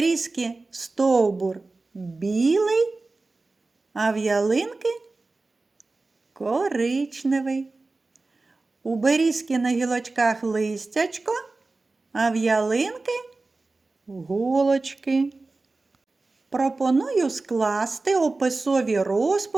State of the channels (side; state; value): left; quieter; 3.4 dB